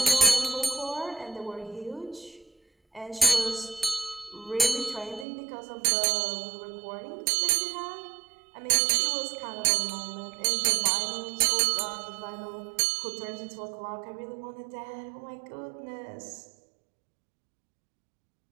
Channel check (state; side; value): drops out; left; at 5.2 s